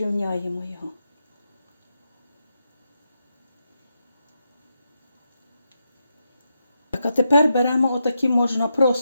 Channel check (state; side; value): inverted; both; correlation -0.85